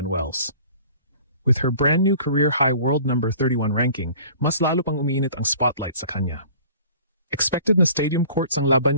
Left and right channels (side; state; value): both; inverted; correlation -0.47